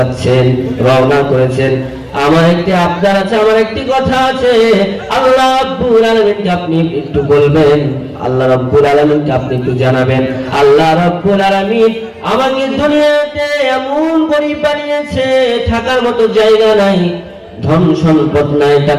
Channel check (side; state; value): both; identical; correlation 1.00